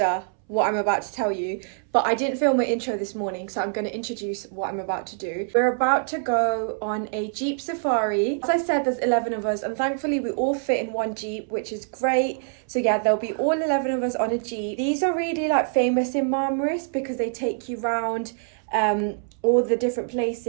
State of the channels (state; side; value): silent; left; 62 dB below the other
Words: what I'm about to tell you, but I didn't film my intro this morning, so I'm going to introduce what I'm about to do. We're about to go on a Jeep safari. As I said, there's 11 of us, and thankfully we all fit in one Jeep, which is great. So yeah, there'll be all 11 of us on a Jeep. These are really like famous in Marmaris because they take you round all the different